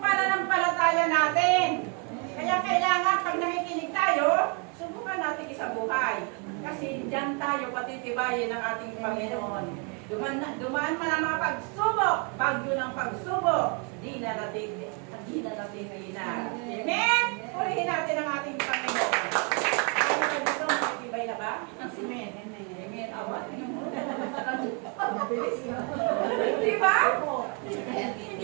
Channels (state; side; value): quieter; left; 36.0 dB